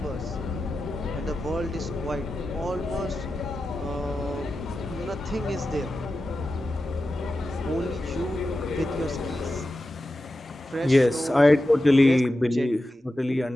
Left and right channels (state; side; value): normal; both; correlation 0.92